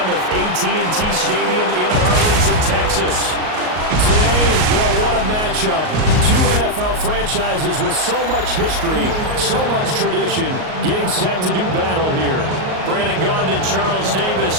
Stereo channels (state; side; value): late; left; 38 ms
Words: AT&T Stadium in Arlington, Texas. Today, boy, what a matchup. Two NFL franchises with so much history, so much tradition, getting set to do battle here. Brandon Gaudin and Charles